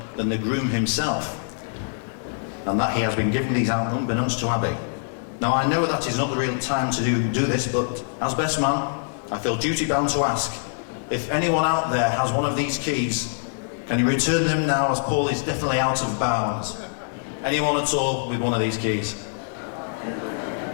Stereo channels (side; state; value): right; silent; 57 dB below the other